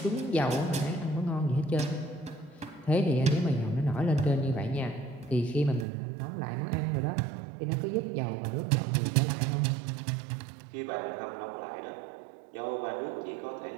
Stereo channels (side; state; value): left; drops out; at 5.9 s